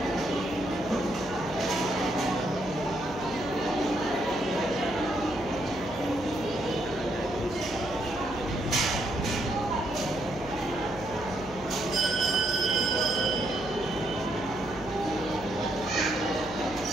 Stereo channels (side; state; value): right; noise; hum, 16 dB below the sound